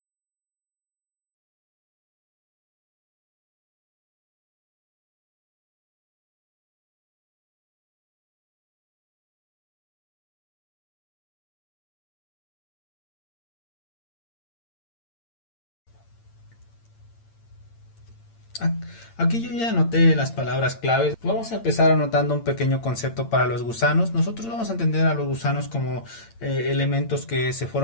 Aquí yo ya anoté las palabras claves. Vamos a empezar anotando un pequeño concepto para los gusanos. Nosotros vamos a entender a los gusanos como elementos que se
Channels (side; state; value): right; late; 8.8 ms